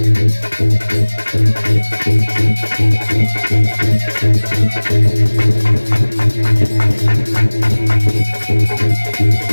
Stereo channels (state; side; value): inverted; both; correlation -1.00